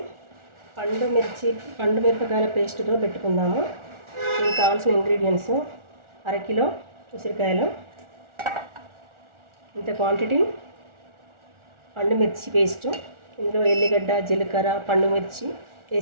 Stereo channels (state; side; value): late; left; 1.4 ms